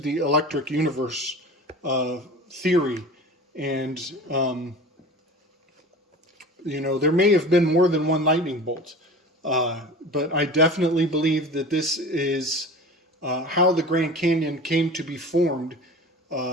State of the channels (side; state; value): both; normal; correlation 0.37